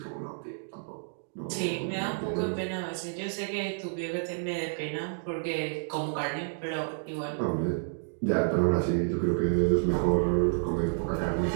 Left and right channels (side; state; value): left; silent; digital silence